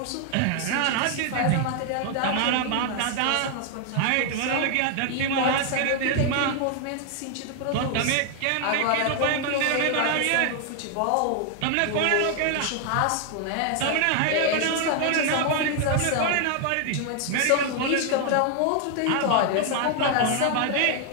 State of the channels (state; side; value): different; both; correlation 0.00